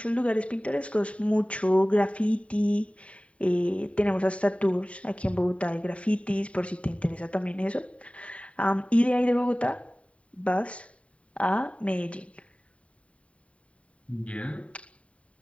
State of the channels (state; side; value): late; right; 0.064 ms